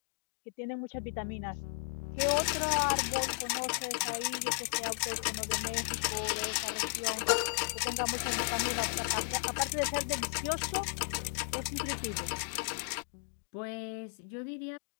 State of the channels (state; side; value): silent; right; 55 dB below the other